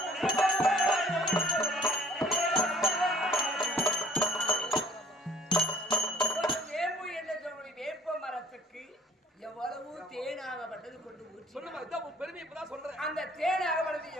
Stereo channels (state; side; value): normal; both; correlation 0.56